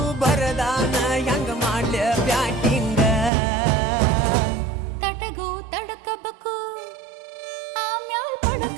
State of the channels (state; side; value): drops out; left; at 3.3 s